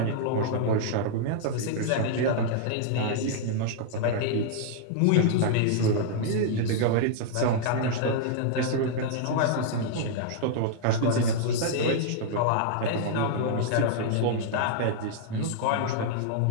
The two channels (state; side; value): different; both; correlation -0.01